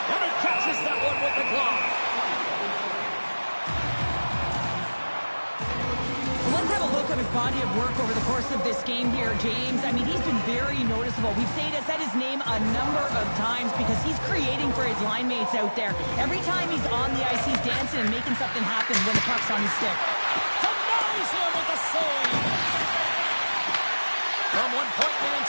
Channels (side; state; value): both; inverted; correlation -1.00